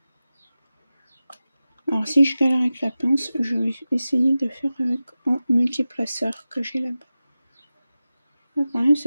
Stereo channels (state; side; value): inverted; both; correlation -0.95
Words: Alors si je galère avec la pince, je vais essayer de faire avec un multiplaceur que j'ai là-bas. Le problème